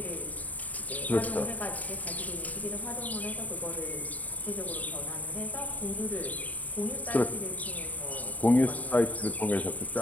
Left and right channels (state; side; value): late; right; 0.075 ms